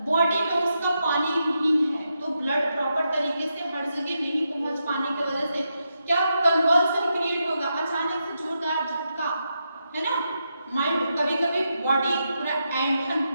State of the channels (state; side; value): inverted; both; correlation -0.85